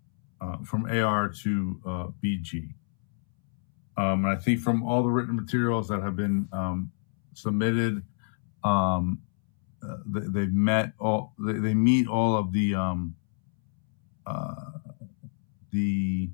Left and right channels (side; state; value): right; silent; 60 dB below the other